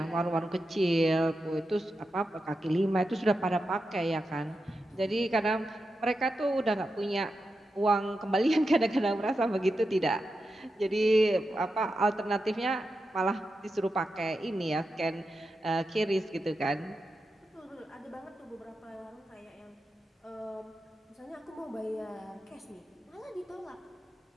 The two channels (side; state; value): both; normal; correlation 0.89